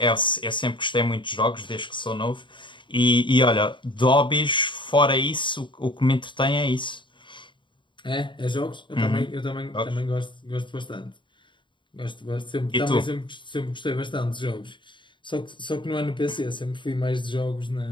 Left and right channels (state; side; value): late; right; 0.23 ms